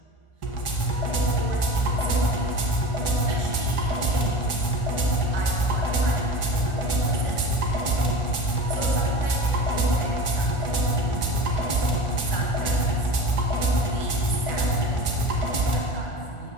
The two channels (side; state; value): right; late; 1.4 ms